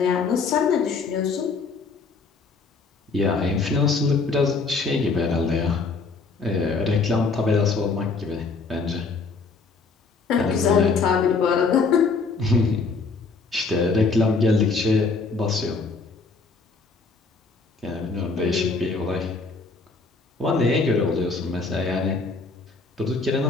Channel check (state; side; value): quieter; right; 4.3 dB